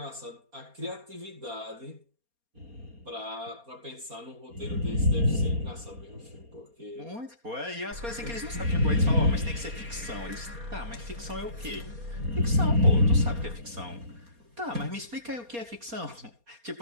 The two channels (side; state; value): left; late; 4.2 ms